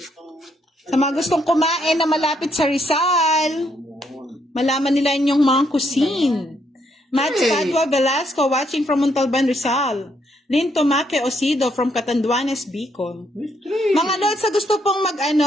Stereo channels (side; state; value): both; normal; correlation 0.74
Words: Sa mga gustong kumain na malapit sa Rizal, malaman nila yung mga cuisine. Matt Padua Velasco watching from Montalban, Rizal. Lynn Tomaque Osido from Catanduanes, Bicol. Mga Lods, sa gusto pong